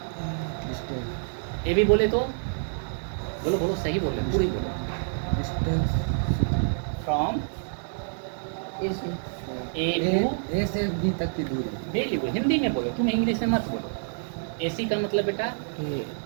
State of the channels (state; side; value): silent; left; digital silence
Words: ए बी बोले तो बोलो बोलो, सही बोले, पूरी बोलो। फ्रॉम ए टू A से B तक की दूरी. वेरी गुड, हिंदी में बोलो, तुम इंग्लिश में मत बोलो। ए सी का मतलब बेटा A